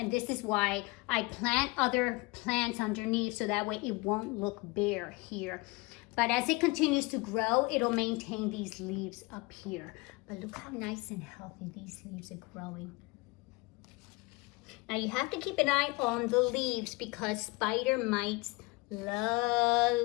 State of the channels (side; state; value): right; quieter; 25.0 dB